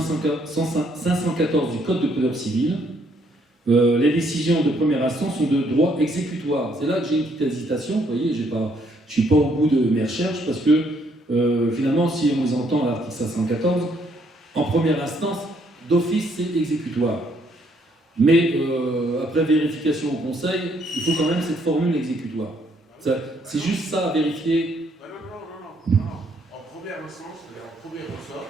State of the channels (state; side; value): normal; both; correlation 0.69